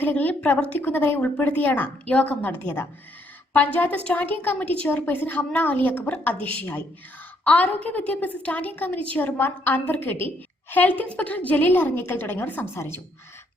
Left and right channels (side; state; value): both; normal; correlation 0.70